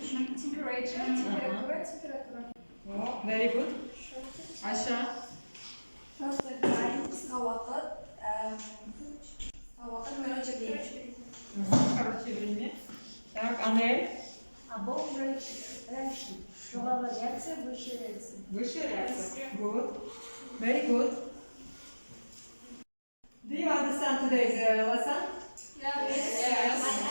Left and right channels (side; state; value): both; inverted; correlation -1.00